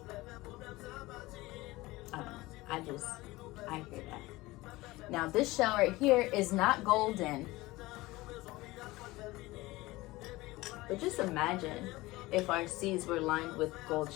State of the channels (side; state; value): right; quieter; 20.0 dB